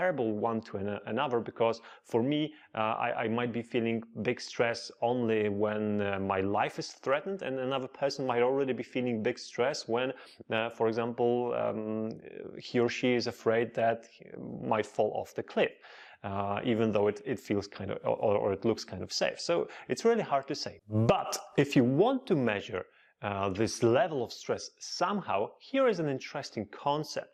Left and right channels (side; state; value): both; identical; correlation 1.00